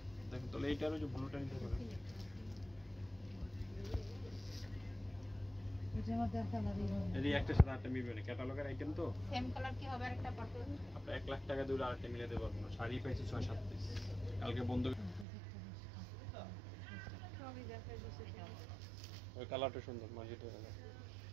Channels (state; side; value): drops out; left; at 15.2 s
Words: দেখো তাহলে এইটারও যে ব্লুটা নিতে পারে। এই একটা সাথে আটটা মিলবে না, ক্যাটালগের আইটেম তো সেম কালার কি হবে আরেকটা পারপল? আপনি 1 লাখ টাকা দিয়ে আরেকটা মিলাতে পারবো না। শাড়ি পাইছি 6-7 পিস, কালকে বন্ধ। সবই দেখাই দিছে। ওই কালারটা সুন্দর, মাঝিটা কালার।